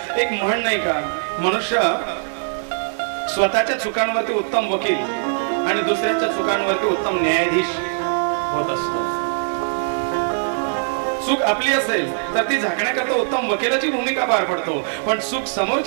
एक म्हण नाही का, मनुष्य स्वतःच्या चुकांवरती उत्तम वकील आणि दुसऱ्याच्या चुकांवरती उत्तम न्यायाधीश होत असतो. चूक आपली असेल तर ती झाकण्याकरता उत्तम वकिलाची भूमिका पार पडतो, पण चूक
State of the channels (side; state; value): left; silent; 59 dB below the other